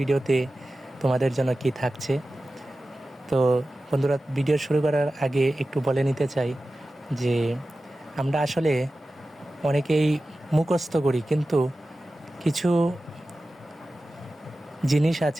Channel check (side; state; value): both; normal; correlation 0.95